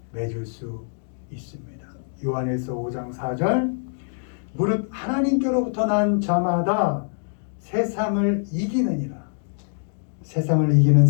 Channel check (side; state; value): right; silent; digital silence